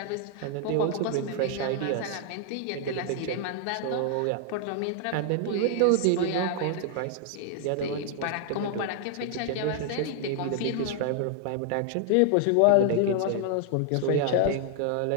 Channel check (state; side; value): different; both; correlation 0.00